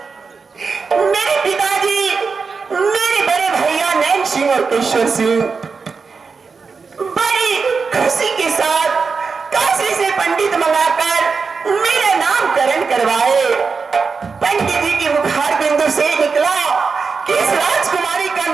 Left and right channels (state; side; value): quieter; left; 5.0 dB